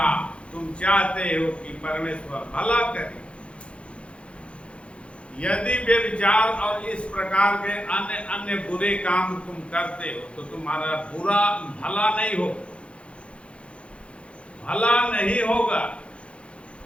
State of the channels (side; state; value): right; late; 0.060 ms